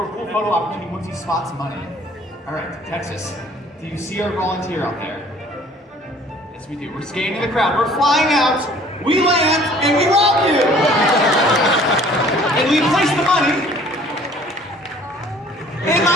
a cool photo opportunity once he spots money. All right, Texas, do you see our volunteer out there? Yes, we do. We're scanning the crowd. We're flying out, we land, and we rob you! And we place the money in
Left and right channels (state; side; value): normal; both; correlation 0.53